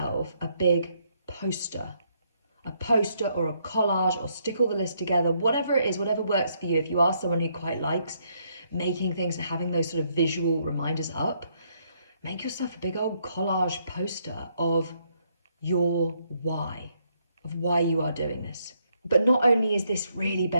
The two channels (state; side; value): inverted; both; correlation -0.72